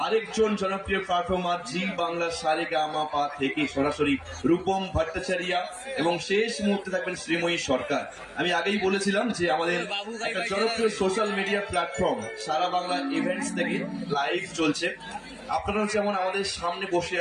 আরেকজন জনপ্রিয় পারফর্মার জি বাংলা সারেগামাপা থেকে সরাসরি রূপম ভট্টাচার্য, এবং শেষ মুহূর্তে থাকবেন শ্রীময়ী সরকার। আমি আগেই বলেছিলাম যে আমাদের একটা জনপ্রিয় সোশ্যাল মিডিয়া প্ল্যাটফর্ম সারা বাংলা ইভেন্টস থেকে লাইভ চলছে। আপনারাও যেমন আমাদের সামনে বসে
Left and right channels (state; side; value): identical; both; correlation 1.00